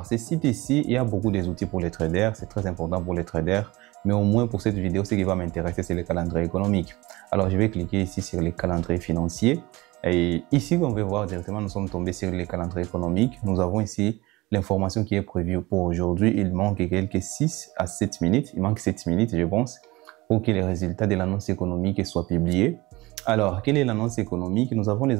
ce site ici, il y a beaucoup d'outils pour les traders, c'est très important pour les traders. Mais au moins pour cette vidéo, ce qui va m'intéresser, c'est le calendrier économique. Alors, je vais cliquer ici sur les calendriers financiers. Et ici, on va voir directement, nous sommes tombés sur les calendriers économiques. Nous avons ici l'information qui est prévue pour aujourd'hui. Il manque quelques 6 à 7 minutes. Il manque 7 minutes, je pense, pour que les résultats de l'annonce économique soient publiés. Alors, quelle est l'annonce économique? Nous avons les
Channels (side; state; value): left; quieter; 21.1 dB